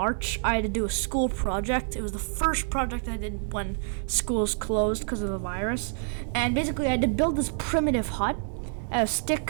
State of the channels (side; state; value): left; silent; digital silence